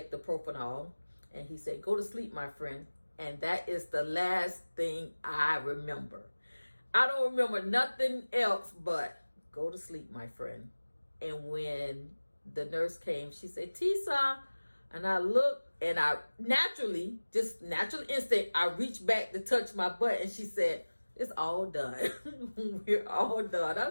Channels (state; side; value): inverted; both; correlation -1.00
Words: the propanol, and he said, "Go to sleep, my friend." And that is the last thing I remember. I don't remember nothing else but go to sleep, my friend. And when the nurse came, she said, "Tisa," and I looked, and I natural instinct, I reached back to touch my butt, and she said, "It's all done." We're all done. I